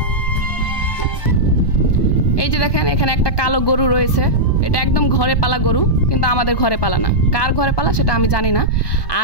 যে দেখেন এখানে একটা কালো গরু রয়েছে, এটা একদম ঘরে পালা গরু, কিন্তু আমাদের ঘরে পালা না। কার ঘরে পালা সেটা আমি জানি না।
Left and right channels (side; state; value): right; late; 1.2 ms